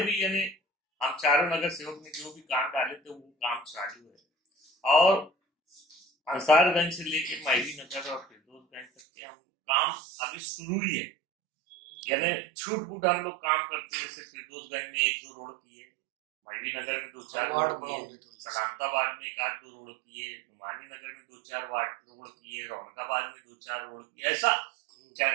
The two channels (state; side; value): drops out; left; at 8.8 s